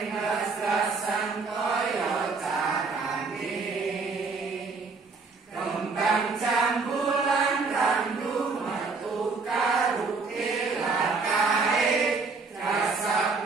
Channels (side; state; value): left; quieter; 4.3 dB